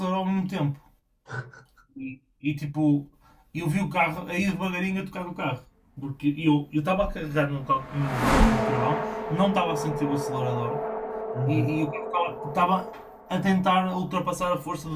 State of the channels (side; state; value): both; identical; correlation 1.00